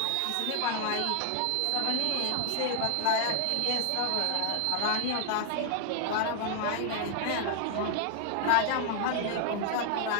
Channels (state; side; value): different; both; correlation 0.00